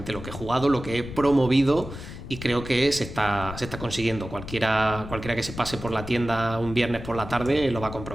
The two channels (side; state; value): left; noise; rumble, 11 dB below the sound